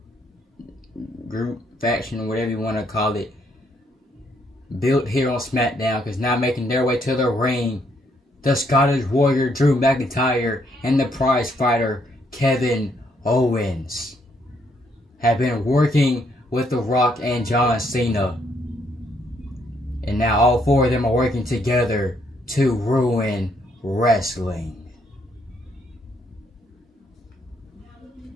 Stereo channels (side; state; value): both; normal; correlation 0.72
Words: whatever you want to call it, built here on SmackDown, because now making their way to the ring, the Scottish Warrior Drew McIntyre and the prize fighter Kevin Owens have been working with The Rock and John Cena. And now all four of them are working together to ruin wrestling.